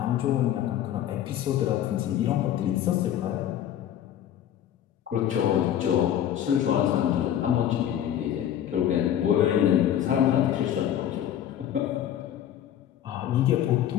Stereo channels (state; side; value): quieter; right; 10.8 dB